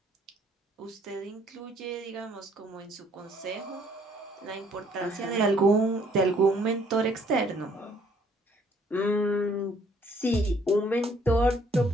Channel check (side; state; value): both; normal; correlation 0.63